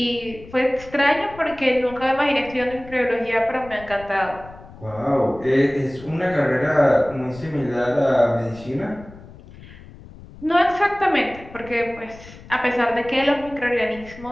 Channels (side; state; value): left; noise; rumble, 19 dB below the sound